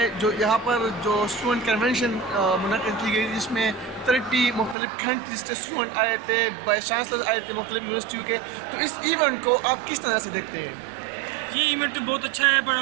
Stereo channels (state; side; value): drops out; left; at 4.8 s